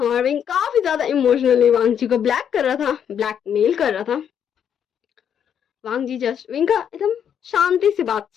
विंग काफी ज्यादा इमोशनली वांग जी को ब्लैकमेल कर रहा था। वांग जी जस्ट विंग का एकदम शांति से बात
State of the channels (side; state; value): right; quieter; 8.5 dB